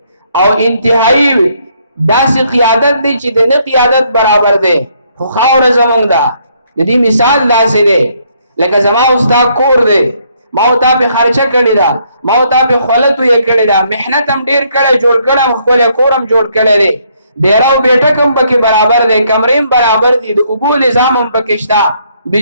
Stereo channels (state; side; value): inverted; both; correlation -0.70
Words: او انتهایی داسې قیادت دی چې د نه قیادت برابر دی. خو خاوره زمونږ ده. د دې مثال داسې دی لکه زما استاد کور دی، ما او تا په خرچه کړې ده، ما او تا په خولت یې کړې ده، محنت هم ډېر کړی، جوړ کړم، خپل کورم جوړ کړی دی، ډیراو بیٹک هم پکې برابر دی، کمرې هم برابر دي، د اوبو نظام هم پکې شته،